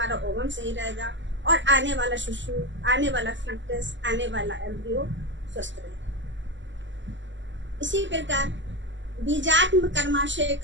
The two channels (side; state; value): left; late; 0.54 ms